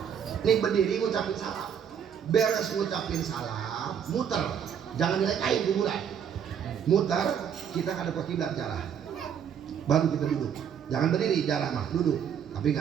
Nih berdiri ngucapin salam, beres ngucapin salam, muter, jangan direkain kuburan, muter, kita ada ke kiblat jarah, baru kita duduk, jangan berdiri jarah mah, duduk, tapi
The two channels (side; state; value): left; quieter; 8.1 dB